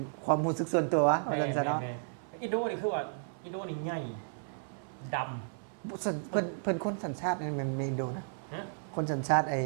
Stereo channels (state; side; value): silent; left; 56 dB below the other